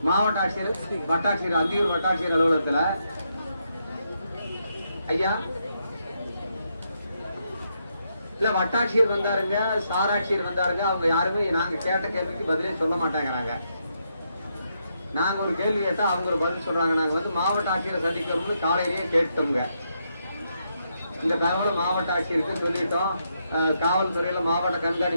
மாவட்ட ஆட்சியர், வட்டாட்சியர், அந்தியூர் வட்டாட்சியர் அலுவலகத்துல ஐயா இல்ல வட்டாட்சியர் வந்தாருங்க, சாராட்சியர் வந்தாருங்க. அவங்க யாருமே நாங்க கேட்ட கேள்விக்கு பதிலே சொல்ல மாட்டேங்கிறாங்க. நாங்க ஒரு கேள்வி கேட்டா அவங்க ஒரு பதில் சொல்றாங்க. நாங்க வந்து மாவட்ட ஆட்சியரை சந்திக்கிறோம்னு காலையிலேயே கேட்டோங்க. இந்த தகவல் மாவட்ட ஆட்சியருக்கு சொல்லிட்டோம். காவல்துறையில மாவட்ட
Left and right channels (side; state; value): both; inverted; correlation -0.79